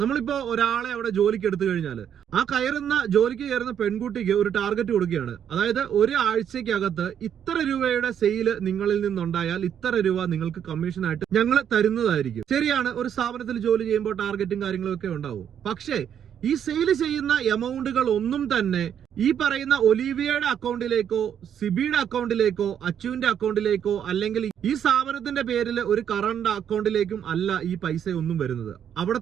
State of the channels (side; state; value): left; quieter; 9.0 dB